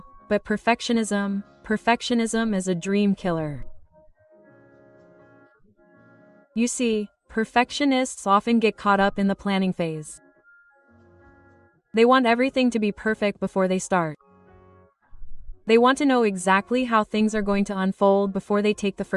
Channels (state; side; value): identical; both; correlation 1.00